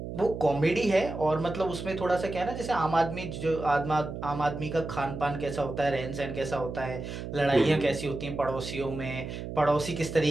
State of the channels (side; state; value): right; noise; hum, 7 dB below the sound